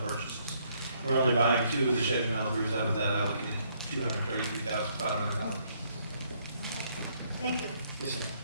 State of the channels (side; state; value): both; inverted; correlation -0.69